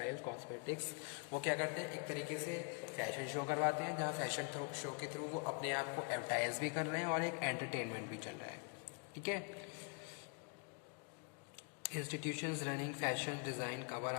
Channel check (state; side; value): quieter; right; 38.7 dB